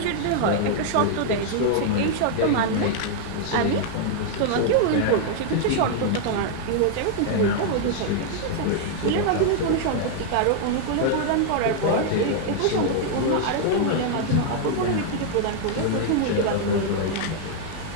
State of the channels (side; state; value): both; different; correlation 0.00